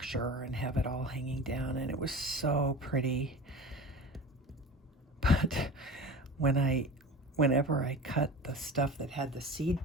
and have it all hanging down. And it was so pretty. But whenever I cut the stuff that had the seed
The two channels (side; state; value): both; normal; correlation 0.35